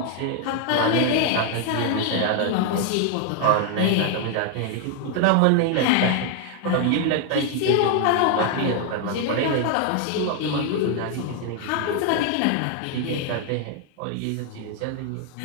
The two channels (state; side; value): different; both; correlation 0.00